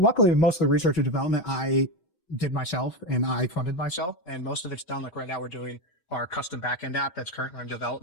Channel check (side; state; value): right; late; 5.7 ms